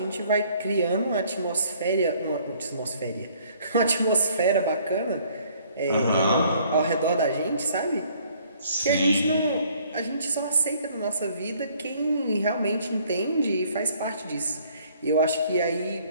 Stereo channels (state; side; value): inverted; both; correlation -0.60